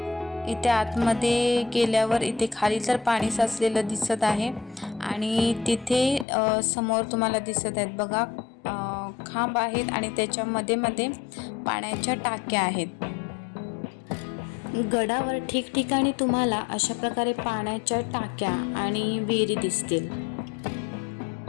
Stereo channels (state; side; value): drops out; right; at 6.2 s